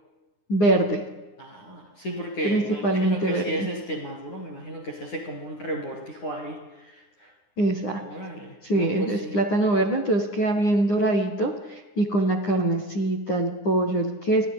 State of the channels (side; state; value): right; late; 9.8 ms